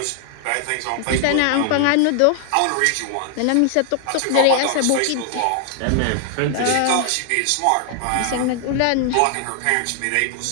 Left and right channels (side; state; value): both; different; correlation 0.00